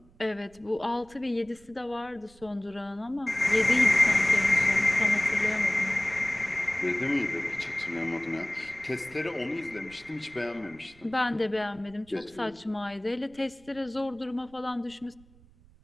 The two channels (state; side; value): noise; right; rumble, 27 dB below the sound